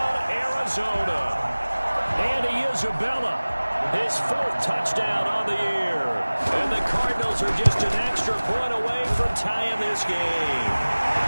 Arizona. Andy Isabella, his 4th touchdown on the year. And the Cardinals are just an extra point away from tying this game.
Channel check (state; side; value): inverted; both; correlation -1.00